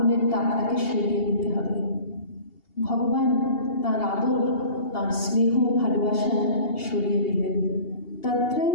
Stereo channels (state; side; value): late; right; 2.8 ms